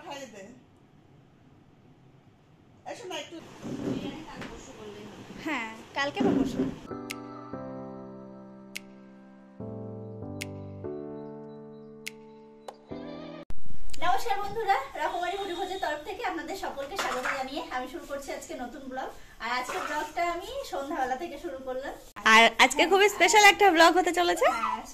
খাইয়ে দে। এসো না একটু বিরিয়ানি কাল পরশু করলেই হবে। হ্যাঁ কালকে বা পরশু। নমস্কার বন্ধুরা, রকমারি মুড়িভোজের তরফ থেকে আপনাদের সকলকে স্বাগত জানিয়ে আমি শুরু করছি আজকে নতুন ব্লগ। আর আজকের ব্লগটা আমি সন্ধ্যাবেলা থেকে শুরু করলাম। আর আজকে খুবই স্পেশাল একটা ব্লগ হতে চলেছে। হ্যাঁ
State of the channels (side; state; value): both; identical; correlation 1.00